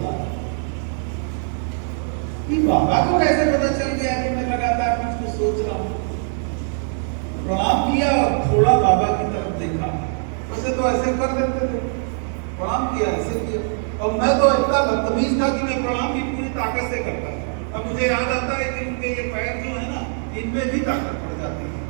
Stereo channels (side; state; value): left; silent; 57 dB below the other